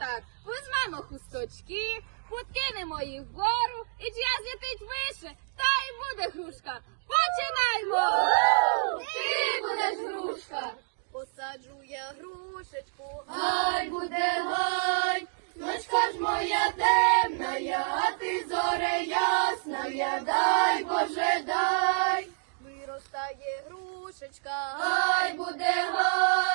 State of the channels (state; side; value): silent; left; digital silence